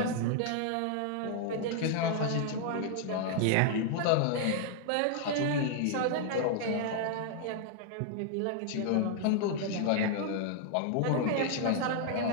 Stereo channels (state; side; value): different; both; correlation 0.00